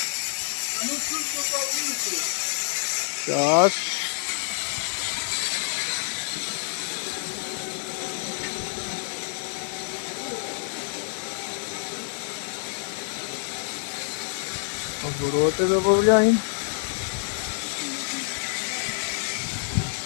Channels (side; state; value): right; silent; digital silence